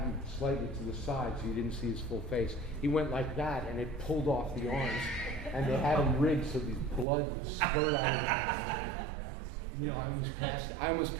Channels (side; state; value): left; drops out; at 7.1 s